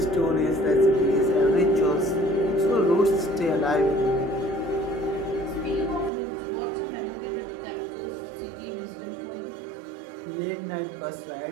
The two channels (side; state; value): left; drops out; at 6.1 s